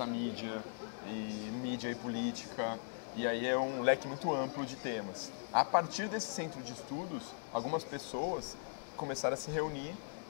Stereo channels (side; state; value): right; silent; digital silence